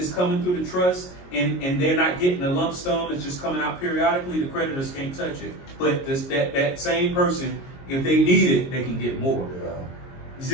coming through the trust, and they're not getting a lump sum. It's just coming out periodically. The creditors can't touch it. But that same person, if they need it, they can get more. Yeah. You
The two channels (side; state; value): right; late; 22 ms